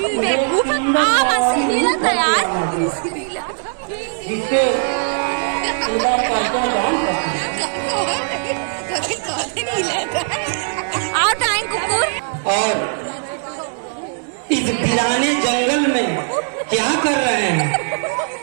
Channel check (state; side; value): silent; left; digital silence